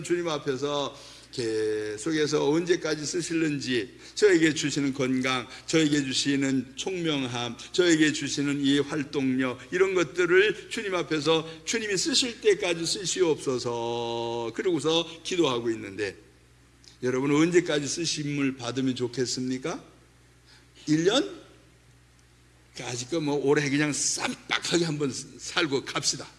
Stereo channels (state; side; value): identical; both; correlation 1.00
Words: 주님 앞에서 계속해서 언제까지 쓰실는지, 저에게 주시는 건강, 저에게 주시는 총명함, 저에게 주시는 이 활동력, 이런 것들을 주님 앞에서 주님이 쓰실 때까지 쓰시옵소서 그러고서 기도하고 있는데, 여러분 언제까지 쓰심을 받으면 좋겠습니까? 1년? 아직 뭐 올해 그냥 쌈박하게 한번 살고 갑시다.